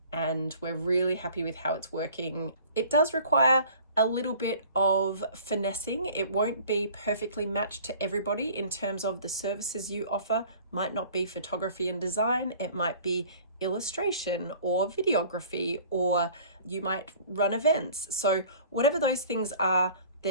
and we're really happy with how it's working. It does require a little bit of finessing. It won't be perfectly matched to everybody in terms of the services you offer. Might not be photography and design. It might be illustration or videography, or you might run events. So whatever those things are,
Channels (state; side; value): inverted; both; correlation -0.48